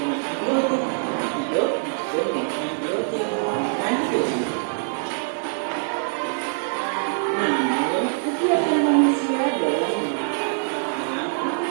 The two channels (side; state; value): left; silent; 62 dB below the other